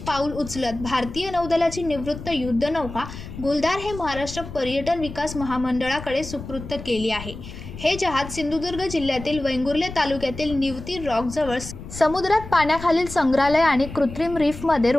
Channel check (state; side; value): noise; left; rumble, 12 dB below the sound